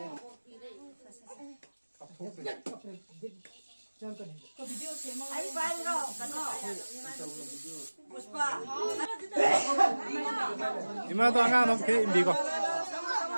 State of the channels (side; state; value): both; inverted; correlation -1.00